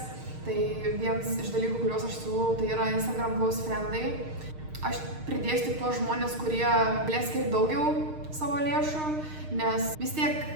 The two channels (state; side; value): late; left; 6.5 ms